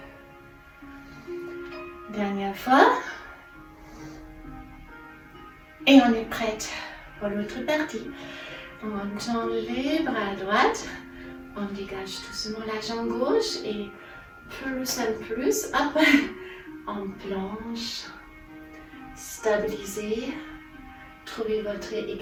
Dernière fois. Et on est prête pour l'autre partie. On tend les bras à droite. On dégage doucement la jambe gauche et plus en plus, hop, on plonge. Stabilisez. Trouvez votre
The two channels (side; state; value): both; identical; correlation 1.00